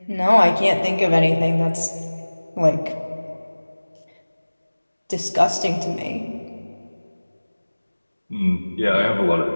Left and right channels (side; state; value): both; inverted; correlation -1.00